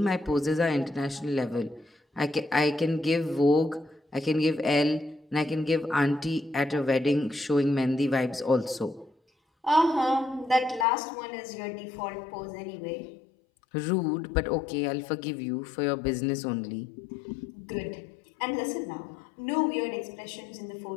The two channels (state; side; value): drops out; right; at 10.9 s